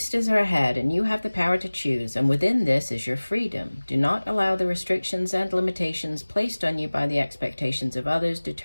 are ahead, and you have the power to choose, and within this is your freedom. Do not allow the restrictions and limitations placed on you by the expectations of others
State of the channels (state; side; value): inverted; both; correlation -1.00